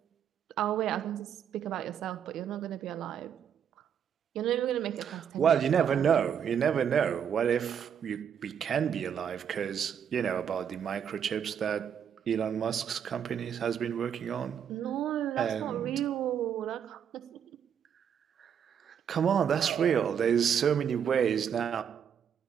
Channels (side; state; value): left; quieter; 8.2 dB